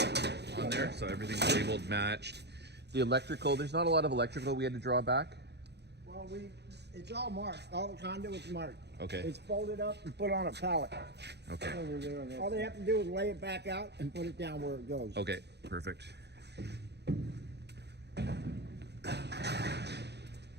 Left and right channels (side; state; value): left; late; 0.49 ms